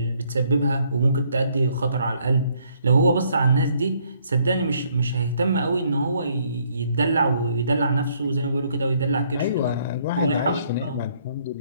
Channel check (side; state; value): both; inverted; correlation -0.67